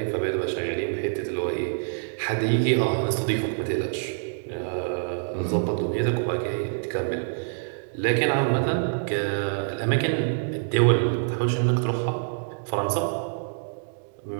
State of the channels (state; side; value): silent; left; digital silence